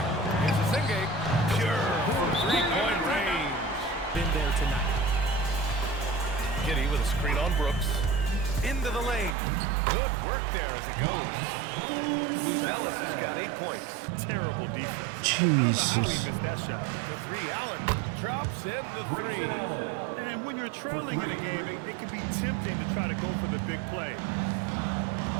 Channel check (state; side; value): drops out; left; at 9.3 s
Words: Here's Asenge. Pure from 3-point range. Been there tonight. Giddy with a screen on Brooks. Into the lane. Good work there as it goes. Ellis has got 8 points. Terrible defense. I don't know how he Jesus. missed that shot. The 3, Allen drops in the 3. And when you're trailing in a game, it can be tempting to try to go for the big play.